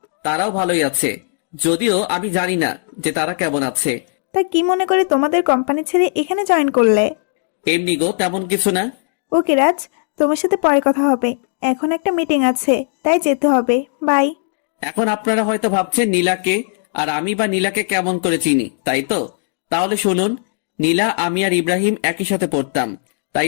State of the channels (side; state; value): right; silent; digital silence